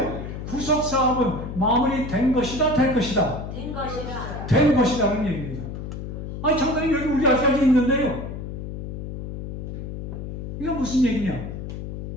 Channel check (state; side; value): noise; left; hum, 7 dB below the sound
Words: 구속 사업은 마무리된 것이다, 될 것이다. 된 것이라. 된 것이라는 얘기입니다. 아니, 장관님 여기 우리 아직까지 있는데요. 이거 무슨 얘기냐?